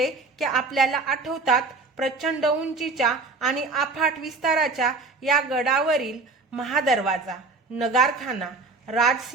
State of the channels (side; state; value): left; quieter; 3.8 dB